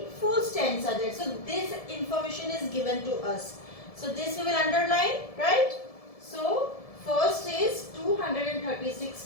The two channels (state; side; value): late; right; 1.7 ms